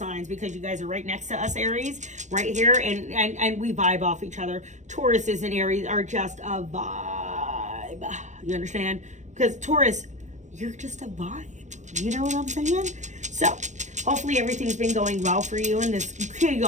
because you guys are right next to us, Aries, right here, and we vibe off each other. Tauruses and Aries are just a vibe. You understand? Because Taurus, you're just a vibe. You know what I'm saying? So, hopefully everything's been going well for you in this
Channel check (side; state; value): left; late; 0.35 ms